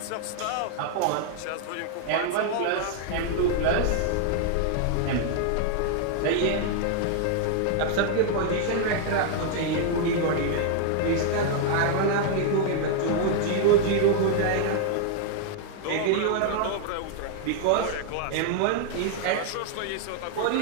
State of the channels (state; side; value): different; both; correlation 0.00